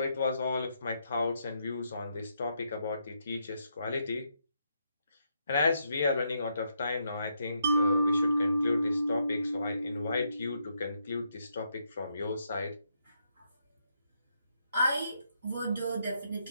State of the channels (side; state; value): both; inverted; correlation -0.78